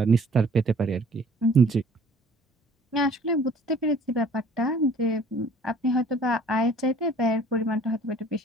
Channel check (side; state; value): both; normal; correlation 0.53